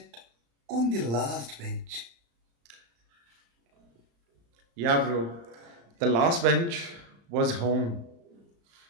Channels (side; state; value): left; late; 35 ms